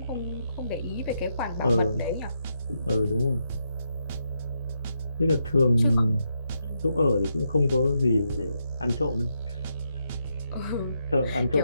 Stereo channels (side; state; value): both; inverted; correlation -0.81